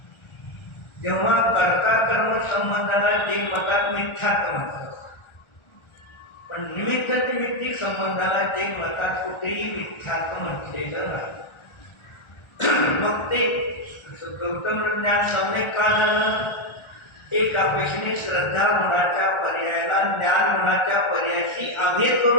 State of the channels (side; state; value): right; late; 1.4 ms